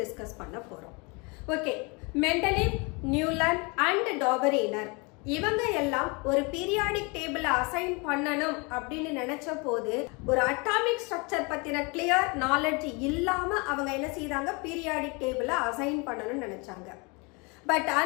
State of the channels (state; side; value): quieter; right; 29.5 dB